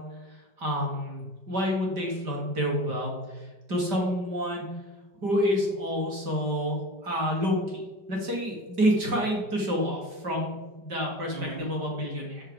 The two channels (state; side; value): late; left; 5.1 ms